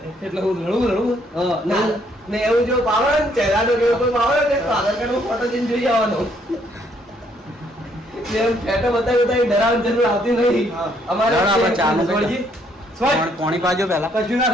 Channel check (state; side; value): normal; both; correlation 0.69